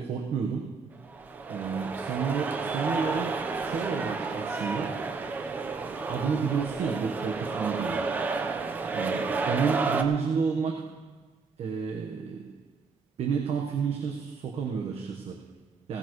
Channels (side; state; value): left; quieter; 4.9 dB